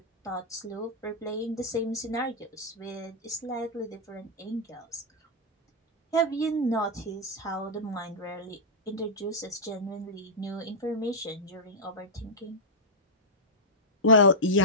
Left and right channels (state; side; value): normal; both; correlation -0.08